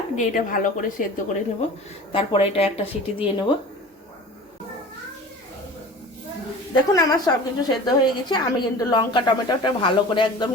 দিয়ে এটা ভালো করে সেদ্ধ করে নেব। তারপরে এটা একটা সিটি দিয়ে নেব। দেখুন আমার সব কিছু সেদ্ধ হয়ে গেছে। আমি কিন্তু লঙ্কা টমেটোটা ভালো করে একদম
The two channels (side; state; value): both; normal; correlation 0.39